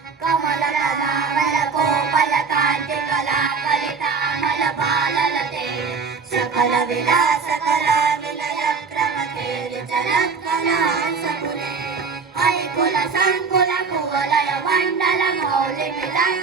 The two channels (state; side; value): quieter; left; 5.2 dB